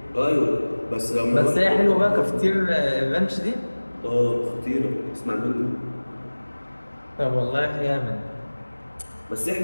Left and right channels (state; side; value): inverted; both; correlation -1.00